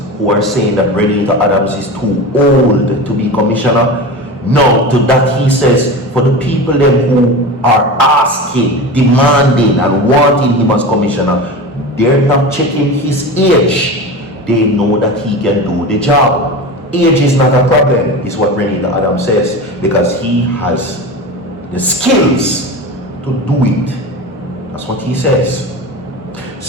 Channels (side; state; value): both; normal; correlation 0.28